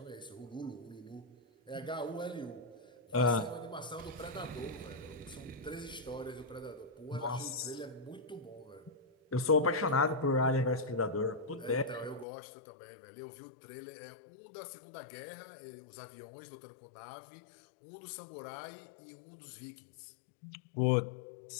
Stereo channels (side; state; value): right; drops out; at 12.2 s